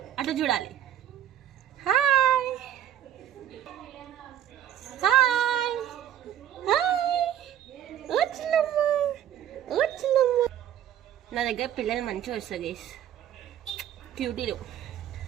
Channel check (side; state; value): left; quieter; 11.0 dB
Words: అటు చూడాలి. Hi hi hi. వచ్చినమ్మా. నా దగ్గర పిల్లలు మంచిగా వస్తుంది గైస్, క్యూటీలు.